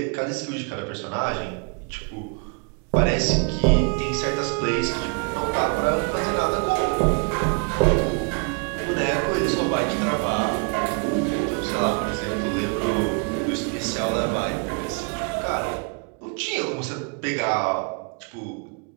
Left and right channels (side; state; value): left; quieter; 35.9 dB